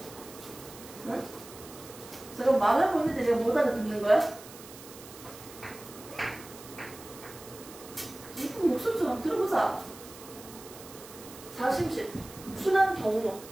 응? 제가 말하고 있는데 내가 못 알아듣는 거야? 이쁜 목소리 좀 한번 들어보자. 좌심실. 순환 경로.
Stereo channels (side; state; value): right; noise; hiss, 17 dB below the sound